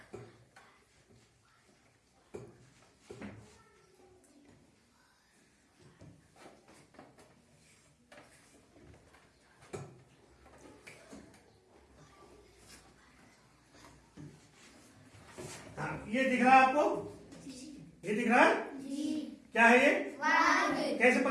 ये दिख रहा है आपको? ये दिख रहा है? क्या है ये? वर्ग। कैसे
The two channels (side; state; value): both; identical; correlation 1.00